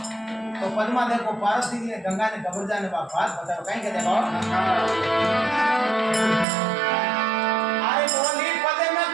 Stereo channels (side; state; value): left; drops out; at 6.5 s